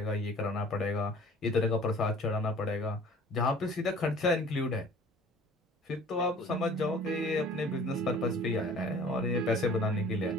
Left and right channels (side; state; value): both; normal; correlation 0.49